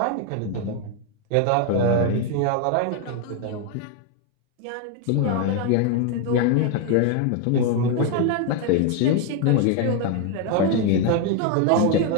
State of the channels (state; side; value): different; both; correlation 0.01